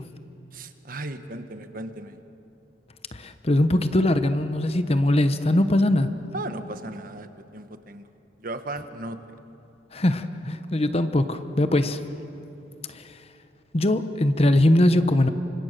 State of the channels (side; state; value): both; normal; correlation 0.85